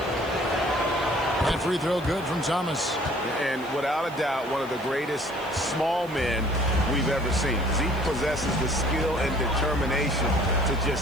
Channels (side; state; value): right; noise; hiss, 24 dB below the sound